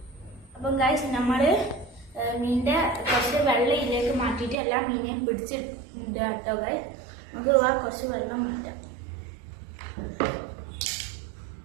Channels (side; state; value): left; drops out; at 4.5 s